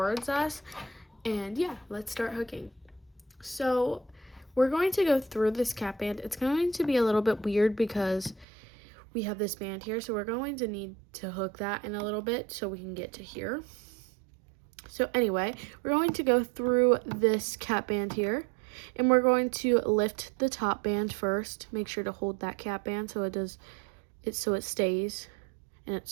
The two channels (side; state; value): left; drops out; at 8.5 s